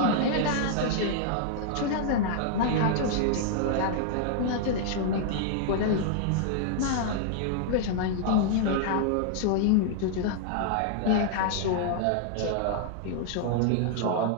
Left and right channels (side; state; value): both; different; correlation -0.01